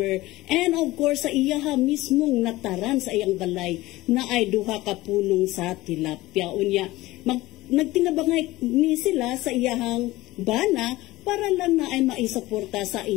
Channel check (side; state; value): right; quieter; 18.5 dB